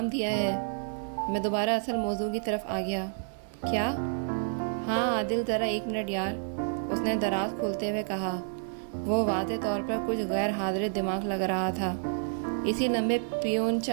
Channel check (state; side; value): silent; left; 58 dB below the other